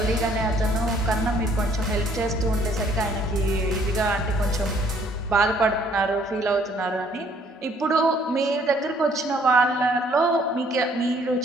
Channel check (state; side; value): normal; both; correlation 0.62